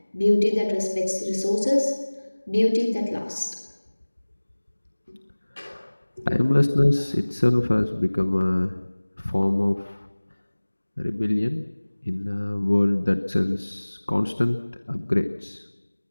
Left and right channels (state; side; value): inverted; both; correlation -1.00